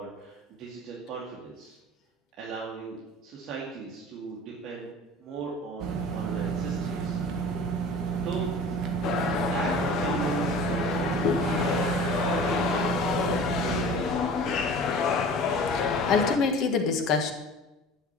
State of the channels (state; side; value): normal; both; correlation 0.41